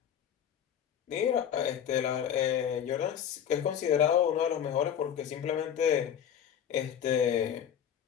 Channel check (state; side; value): quieter; right; 9.1 dB